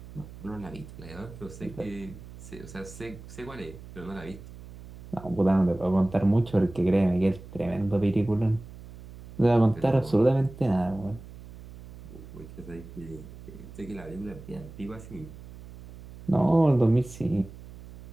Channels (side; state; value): right; noise; hum, 16 dB below the sound